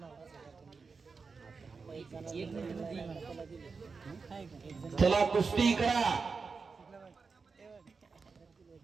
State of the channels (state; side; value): quieter; left; 4.8 dB